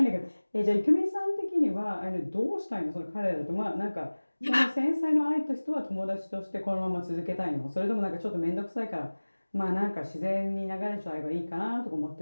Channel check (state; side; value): inverted; both; correlation -1.00